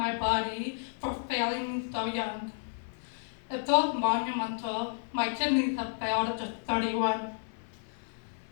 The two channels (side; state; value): right; silent; 57 dB below the other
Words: body for failing me so young. It feels monumental. My kidneys have failed at just 31.